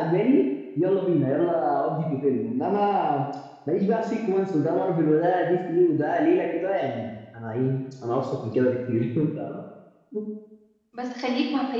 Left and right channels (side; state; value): both; identical; correlation 1.00